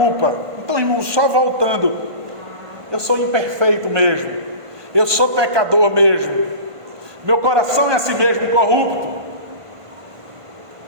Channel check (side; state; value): left; late; 1.5 ms